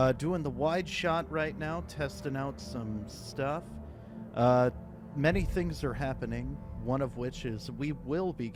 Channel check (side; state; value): both; identical; correlation 1.00